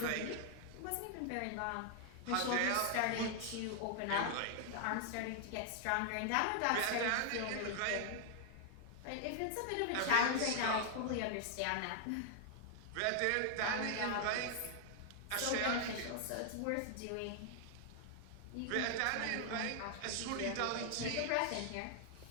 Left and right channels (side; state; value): both; different; correlation 0.00